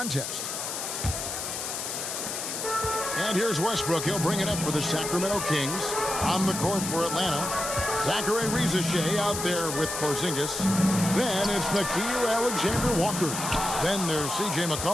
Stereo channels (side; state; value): left; noise; hiss, 4 dB below the sound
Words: And here's Westbrook. He'll bring it up for the Sacramento Kings. On the court for Atlanta, Zachary Rizachet out there with Porzingis. Then it's Nickeil Alexander-Walker. Then there's C.J.